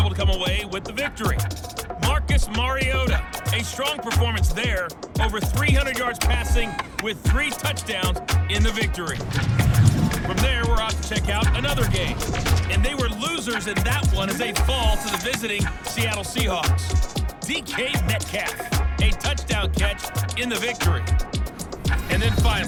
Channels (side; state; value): both; identical; correlation 1.00